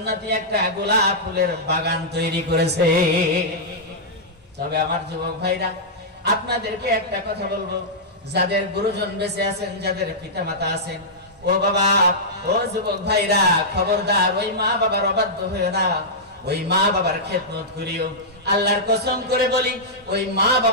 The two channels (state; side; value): normal; both; correlation -0.11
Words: একটা গোলাপ ফুলের বাগান তৈরি করেছে। তবে আমার যুবক ভাইরা, আপনাদেরকে একটা কথা বলবো, যাদের গুরুজন বেঁচে আছেন, যাদের পিতা মাতা আছেন, ও বাবা, ও যুবক ভাইরা, খবরদার ওই মা বাবার অবাধ্য হয়ে না, ওই মা বাবার খেদমত করিও। আল্লাহর কসম করে বলি, ওই মা